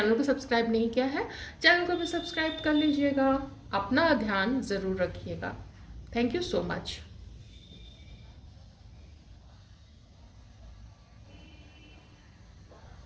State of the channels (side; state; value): both; identical; correlation 1.00